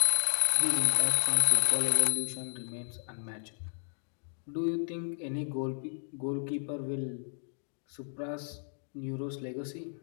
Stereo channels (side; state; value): right; silent; digital silence